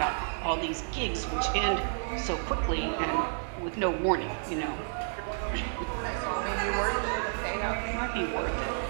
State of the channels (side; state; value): left; silent; 57 dB below the other